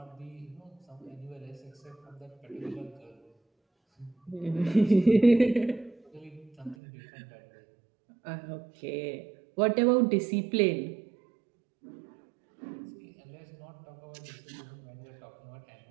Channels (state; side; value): drops out; left; at 6.8 s